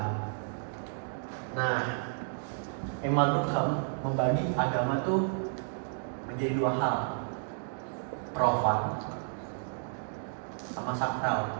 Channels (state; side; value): silent; left; digital silence